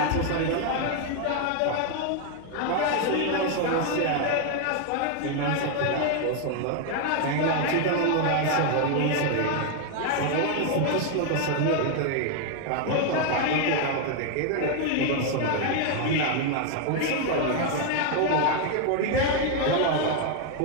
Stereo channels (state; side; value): different; both; correlation 0.00